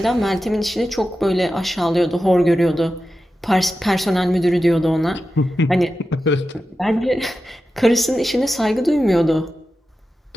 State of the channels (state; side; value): normal; both; correlation 0.92